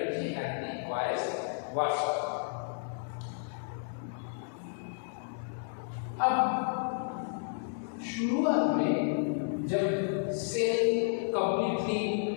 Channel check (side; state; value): right; silent; digital silence